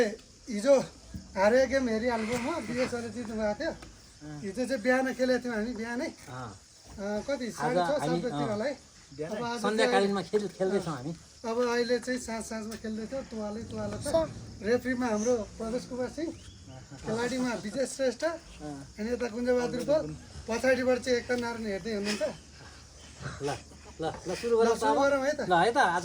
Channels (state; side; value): identical; both; correlation 1.00